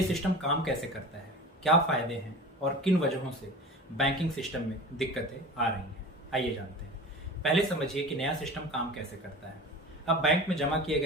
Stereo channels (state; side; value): normal; both; correlation 0.35